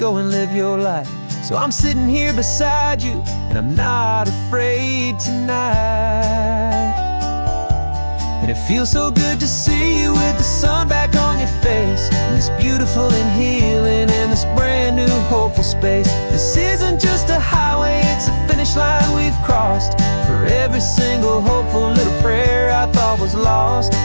and live your life. So I'm sitting here beside you, and I'm not afraid tonight. And it feels so good to see you with the sun back on your face, and this beautiful and healing in this brand new hopeful space. This isn't just a highway, it's a finish line we've crossed. For every single hopeful little prayer I thought was lost,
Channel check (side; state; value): both; inverted; correlation -1.00